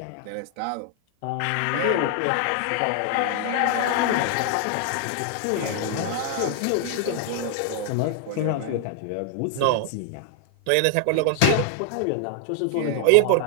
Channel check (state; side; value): different; both; correlation 0.00